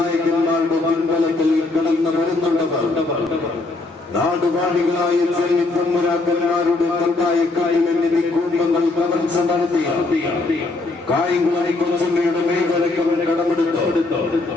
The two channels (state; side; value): quieter; right; 3.3 dB